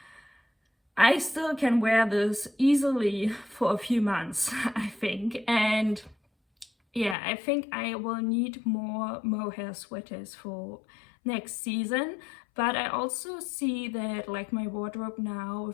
I still can wear this easily for a few months, I think. And yeah, I think I will need more mohair sweaters for next season. But I also see that, like, my wardrobe now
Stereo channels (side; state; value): right; drops out; at 7.2 s